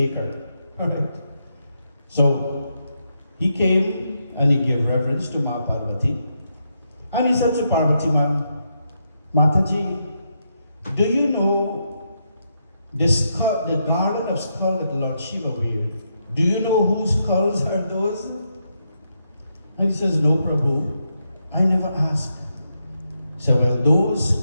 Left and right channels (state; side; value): inverted; both; correlation -0.81